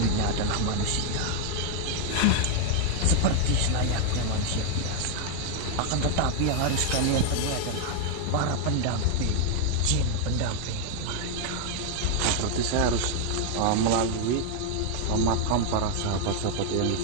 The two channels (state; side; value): different; both; correlation 0.00